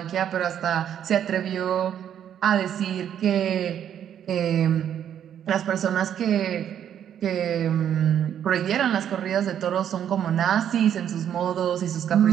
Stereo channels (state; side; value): quieter; left; 9.6 dB